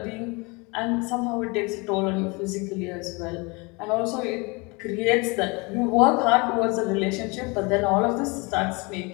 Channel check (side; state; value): right; quieter; 28.0 dB